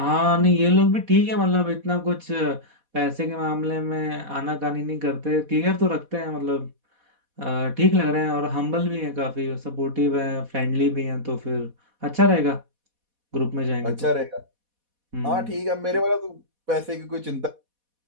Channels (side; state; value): left; late; 4.1 ms